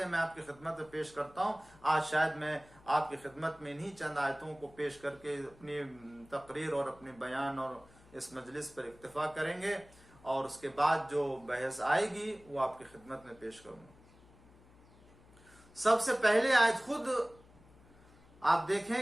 میں آپ کی خدمت میں پیش کرتا ہوں. آج شاید میں آپ کی خدمت میں انہی چند آیتوں کو پیش کر کے اپنی تقریر اور اپنے بیان اور اس مجلس پر اکتفا کریں گے، اور اس کے بعد جو بحث آئے گی وہ آپ کی خدمت میں پیش کروں گا. سب سے پہلے آیت خود آپ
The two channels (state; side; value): noise; left; hum, 25 dB below the sound